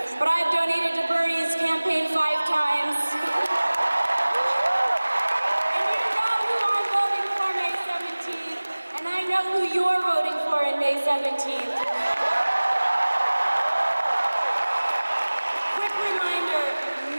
but I've donated to Bernie's campaign 5 times. And you know who I'm voting for May 17th, and I know who you're voting for in May 17th. Quick reminder,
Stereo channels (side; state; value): both; inverted; correlation -1.00